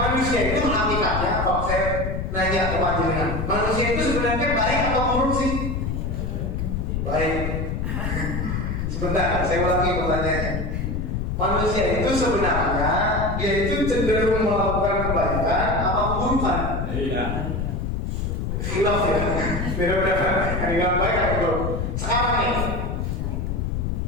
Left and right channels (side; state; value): left; noise; rumble, 2 dB below the sound